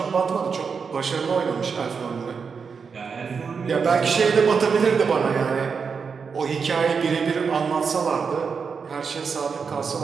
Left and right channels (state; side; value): quieter; left; 5.7 dB